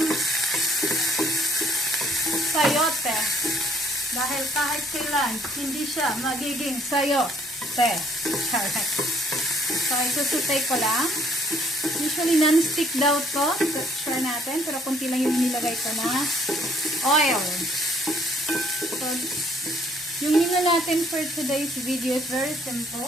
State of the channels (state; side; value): normal; both; correlation 0.63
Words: sayote. Dahil kahit kailan, hindi siya magiging sayote. Correct. So, isusutay ko lang. Usually, non-stick daw to. Try natin. Pero kunti lang yung nilagay ko na oil. So, yung nila natin for today's video is very